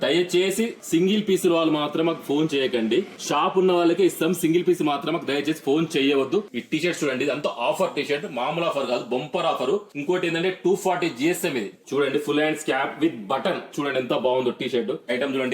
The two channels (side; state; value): both; identical; correlation 1.00